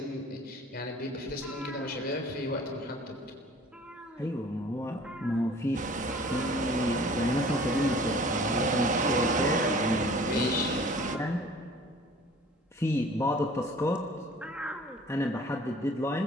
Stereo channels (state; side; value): normal; both; correlation 0.49